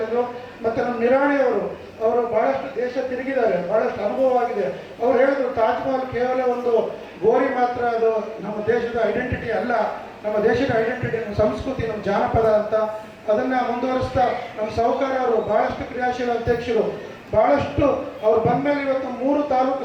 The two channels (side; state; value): both; identical; correlation 1.00